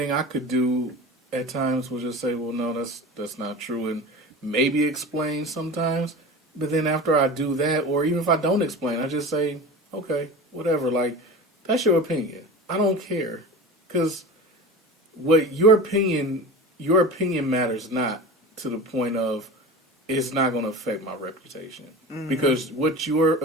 I could do at times was just say, well, no, that's not true. And maybe explain sometimes. But then after I do that, or even if I don't explain, I just say, okay, whatever. Like, that's your opinion. I don't care. Because what your opinion matters not to the point of it's not going to affect my reputation. Mm-hmm. Because what your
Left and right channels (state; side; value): normal; both; correlation 0.32